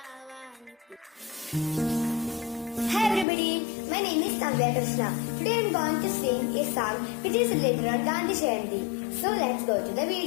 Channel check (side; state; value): right; drops out; at 3.2 s